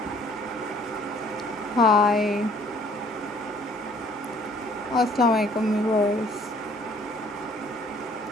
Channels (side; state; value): both; normal; correlation 0.58